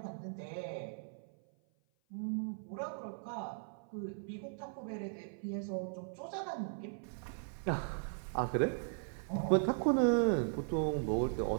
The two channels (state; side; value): silent; left; 52 dB below the other